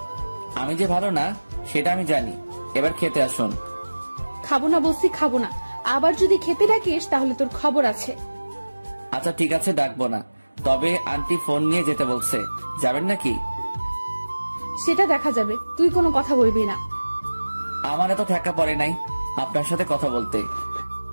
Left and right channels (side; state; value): both; inverted; correlation -1.00